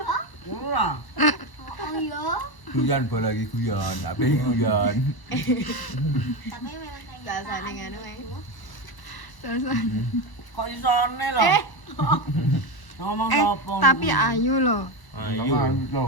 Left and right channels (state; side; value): late; right; 1.0 ms